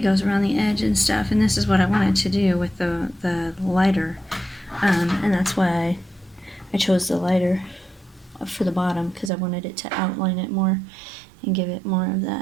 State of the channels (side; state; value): left; drops out; at 9.3 s